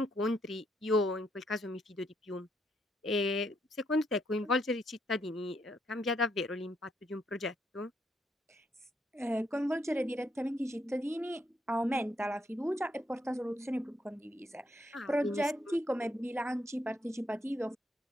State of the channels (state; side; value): normal; both; correlation 0.75